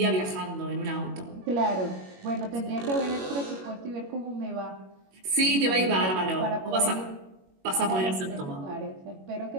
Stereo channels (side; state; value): left; late; 21 ms